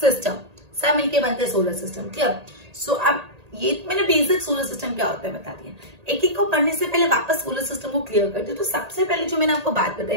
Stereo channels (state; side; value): late; left; 1.8 ms